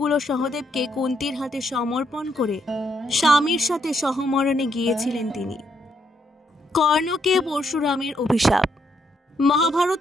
ও সহদেবকে কুন্তীর হাতে সমর্পণ করে স্বামীর সাথে সহমরণে গিয়েছিলেন তিনি। কর্ণকে পরশুরামের অভিশাপ।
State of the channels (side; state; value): both; normal; correlation 0.76